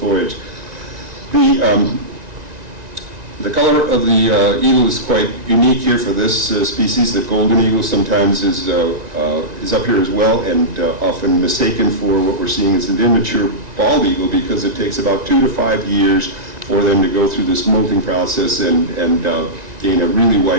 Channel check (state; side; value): late; left; 1.9 ms